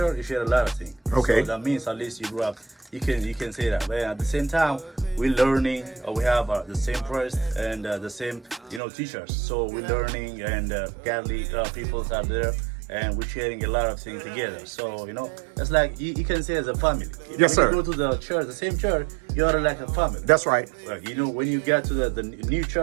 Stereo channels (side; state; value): left; drops out; at 8.8 s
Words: you share a lot of things. Okay. So that means at least you grew up. You can say that. But at the same time, we're learning. We have the same priest and the same teachers. So we're learning, and godly people are there. And we're sharing a lot of things together. So, it's like you can say as a family. Yes, sir. When you go to the church, the same church, you are like a family. That's right. Like, when you get to the new